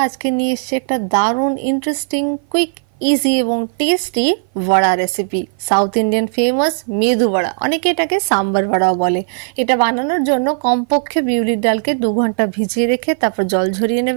আজকে নিয়ে এসেছি একটা দারুণ ইন্টারেস্টিং, কুইক, ইজি এবং টেস্টি বড়া recipe. South Indian famous medu বড়া, অনেকে এটাকে সাম্বার বড়াও বলে। এটা বানানোর জন্য কমপক্ষে বিউলির ডালকে 2 ঘন্টা ভিজিয়ে রেখে তারপর জল ঝরিয়ে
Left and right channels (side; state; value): left; silent; 56 dB below the other